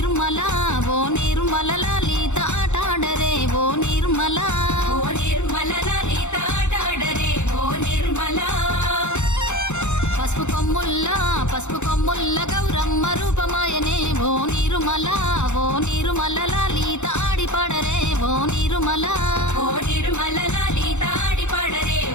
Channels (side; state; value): right; late; 0.83 ms